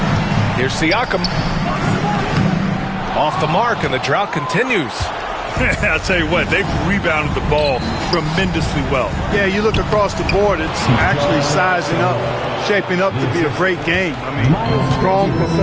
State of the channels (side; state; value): both; identical; correlation 1.00